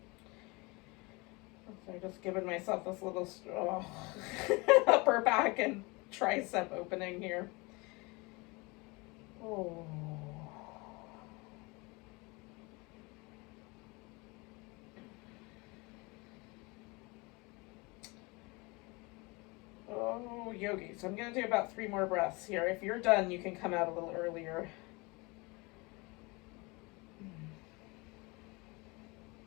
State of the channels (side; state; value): right; quieter; 26.3 dB